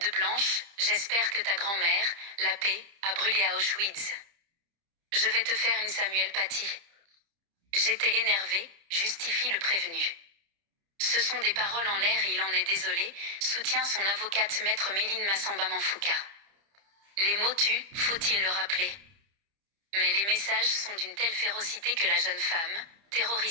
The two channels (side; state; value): left; late; 30 ms